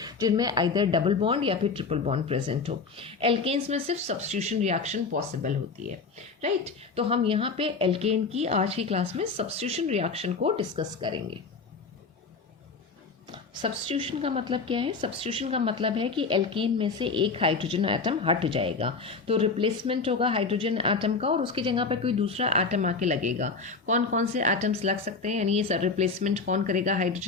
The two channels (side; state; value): right; quieter; 4.5 dB